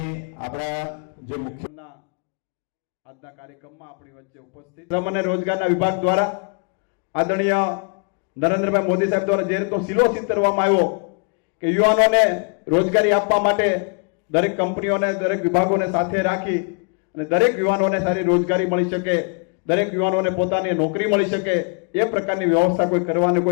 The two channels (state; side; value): quieter; right; 39.3 dB